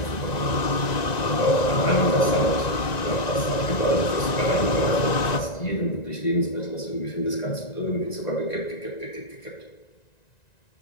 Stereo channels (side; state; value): right; late; 1.9 ms